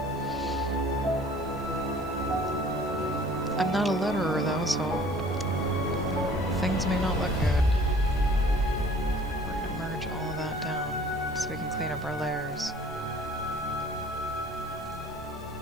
I'm not a letterer though, so things may not look good. We're gonna merge all of that down so we can clean up our layers.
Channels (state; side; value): noise; left; hiss, 28 dB below the sound